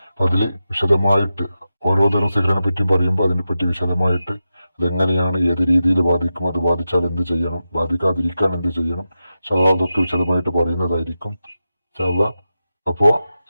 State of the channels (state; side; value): inverted; both; correlation -0.91